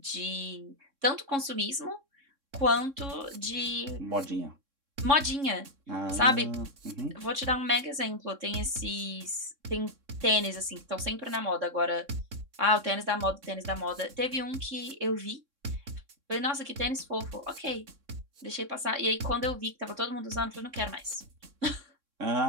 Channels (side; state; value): left; late; 3.6 ms